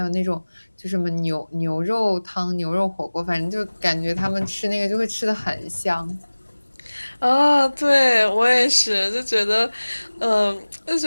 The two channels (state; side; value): inverted; both; correlation -1.00